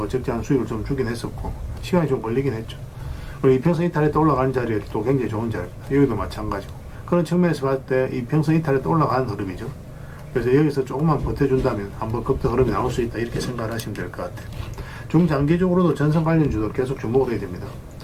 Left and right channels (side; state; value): both; identical; correlation 1.00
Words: 적절한 수익을 좀 주긴 했었고, 시간이 좀 걸리긴 했죠. 그리고 이평선 이탈에 또 올라가는 자리에 또 굉장히 좋은 자리입니다. 여기도 마찬가지고, 그런 측면에서 봤을 때 이평선 이탈에 또 올라가는 흐름이죠. 그래서 여기서 조금만 버텨준다면 한번 급등 흐름이 나올 수 있다, 이렇게 생각을 하시면 될 것 같아요. 중장기적으로도 전선 관련주도 계속 주목을 해야 됩니다.